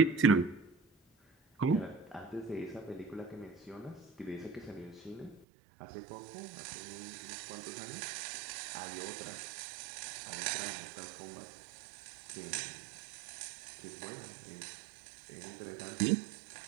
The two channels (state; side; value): drops out; left; at 5.5 s